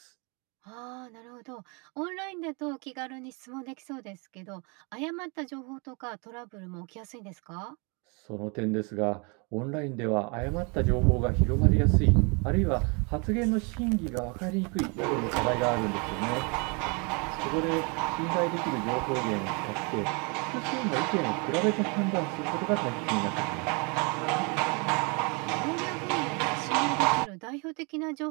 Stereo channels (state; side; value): quieter; left; 32.5 dB